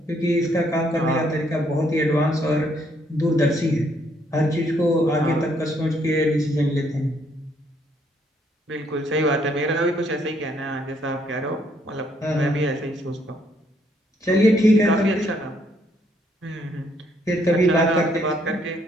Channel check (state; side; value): normal; both; correlation 0.70